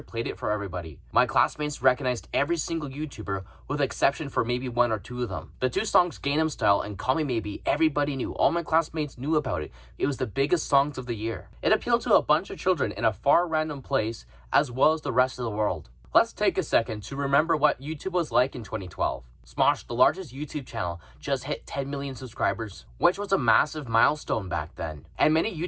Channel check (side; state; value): both; identical; correlation 1.00